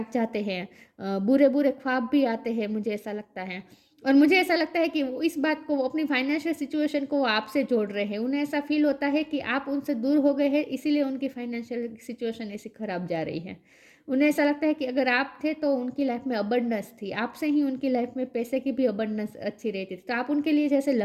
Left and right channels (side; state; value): both; identical; correlation 1.00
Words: जाते हैं, बुरे बुरे ख्वाब भी आते हैं, मुझे ऐसा लगता है। और मुझे ऐसा लगता है कि वो इस बात को, वो अपनी फाइनेंशियल सिचुएशन को आपसे जोड़ रहे हैं। उन्हें ऐसा फील होता है कि आप उनसे दूर हो गए हैं, इसीलिए उनकी फाइनेंशियल सिचुएशन ऐसी खराब जा रही है। उन्हें ऐसा लगता है कि अगर आप थे तो उनकी लाइफ में अबंडेंस थी, आपसे ही उनकी लाइफ में पैसे की भी अबंडेंस अच्छी रहती थी, तो आप उनके लिए जैसे